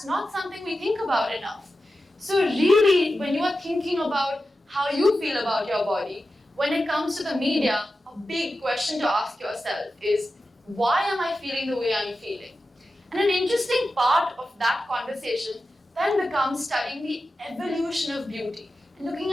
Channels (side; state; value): both; normal; correlation 0.92